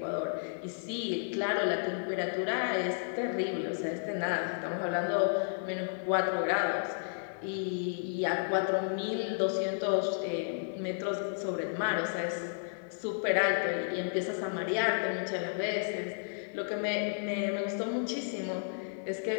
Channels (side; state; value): right; silent; digital silence